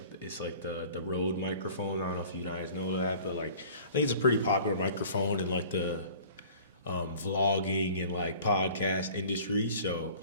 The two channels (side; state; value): both; inverted; correlation -0.47